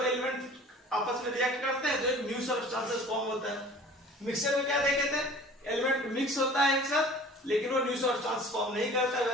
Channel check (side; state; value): both; normal; correlation 0.45